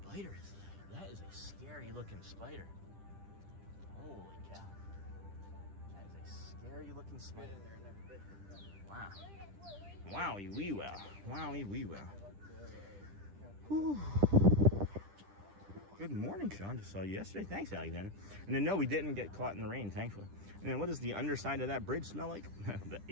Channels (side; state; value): left; late; 10 ms